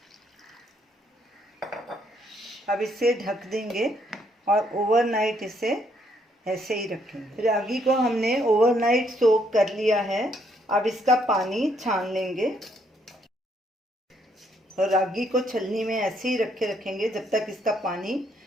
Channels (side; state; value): both; normal; correlation 0.71